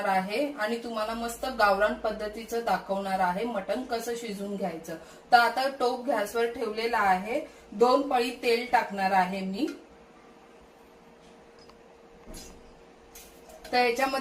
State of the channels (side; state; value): both; identical; correlation 1.00